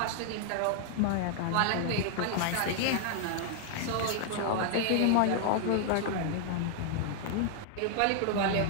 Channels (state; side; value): different; both; correlation 0.00